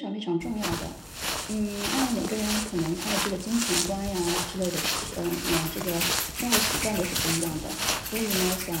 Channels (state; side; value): identical; both; correlation 1.00